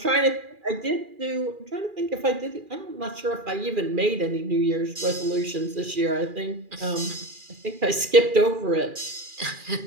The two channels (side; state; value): left; late; 2.4 ms